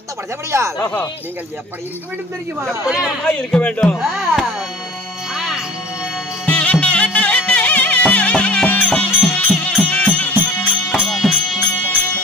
படைத்தபடியால் நீங்கள் எப்படி இருக்க வேண்டும் தெரியுமா? எப்படி மாமா இருக்க வேண்டும்?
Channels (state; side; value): normal; both; correlation 0.44